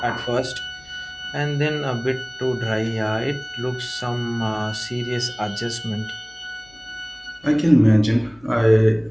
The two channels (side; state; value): left; noise; hum, 29 dB below the sound